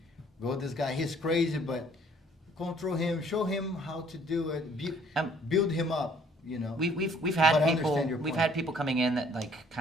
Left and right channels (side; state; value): both; normal; correlation 0.60